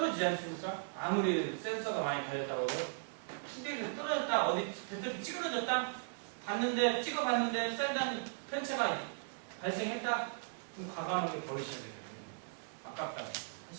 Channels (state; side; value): silent; left; digital silence